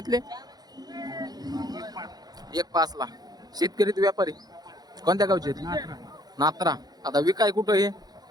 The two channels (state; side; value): late; left; 0.19 ms